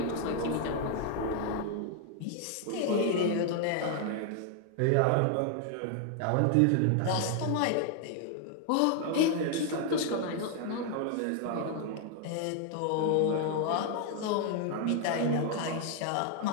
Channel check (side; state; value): both; different; correlation 0.00